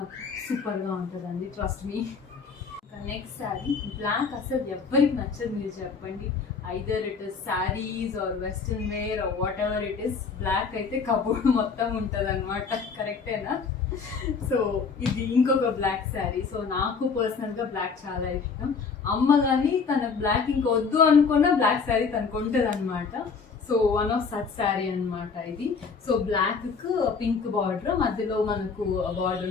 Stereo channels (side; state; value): right; quieter; 5.3 dB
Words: సూపర్గా ఉంటుందండి, trust me. Next sari black అసలు ఎవరికి నచ్చదు మీరు చెప్పండి. Either it is saris or western wear or whatever it is, black అయితే కబోర్డ్ మొత్తం ఉంటుంది అనమాట. కరెక్టేనా? సో ఇది ఇంకొక బ్లాక్ శారీ. సో నాకు పర్సనల్గా బ్లాక్ చాలా ఇష్టం. అమ్మ కానీ తన బ్లాక్ ఇంకా వద్దు అనుకున్న బ్లాక్ శారీ తనకు ఉంటుంది అనమాట. So one of such sari అనమాట ఇది. సో బ్లాక్ కు పింక్ బార్డర్, మధ్యలో మనకు